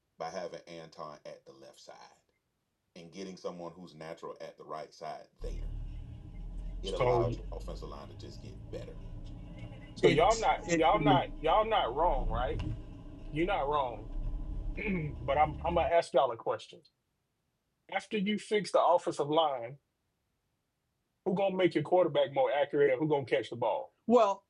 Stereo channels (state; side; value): identical; both; correlation 1.00